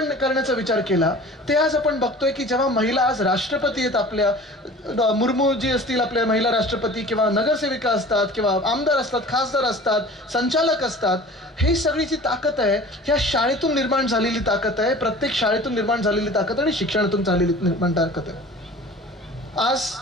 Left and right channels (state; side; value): normal; both; correlation 0.42